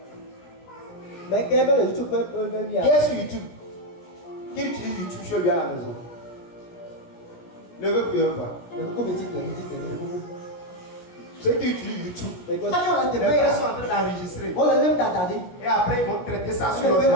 Mais quel est le YouTube? Qui est sur YouTube? Qui utilise YouTube chez lui à la maison? Levez plus un pas. Ceux qui utilisent YouTube, les frères sont en train d'enregistrer. Et après, ils vont traiter ça sur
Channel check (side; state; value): right; late; 17 ms